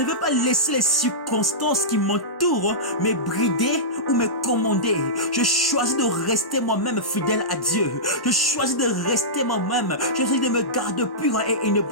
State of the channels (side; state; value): right; late; 1.1 ms